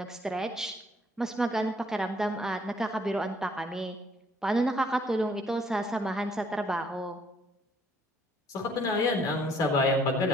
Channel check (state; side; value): normal; both; correlation 0.63